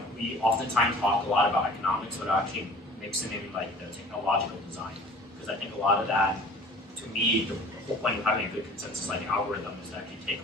we oftentimes talk a lot about economics, but actually mixing in like the technological design. Because I think a lot of that, to me, the whole point of having a good consensus like algorithm is that you take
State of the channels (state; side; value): normal; both; correlation 0.46